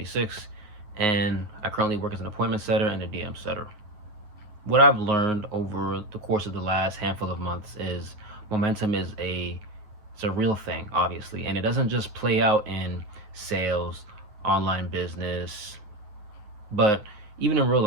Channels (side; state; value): left; late; 9.5 ms